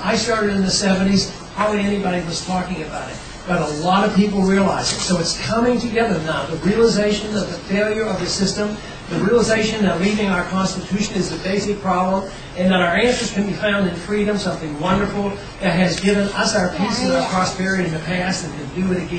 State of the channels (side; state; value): both; identical; correlation 1.00